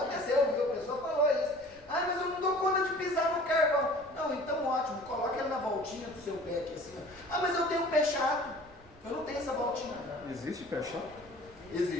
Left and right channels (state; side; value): noise; right; rumble, 23 dB below the sound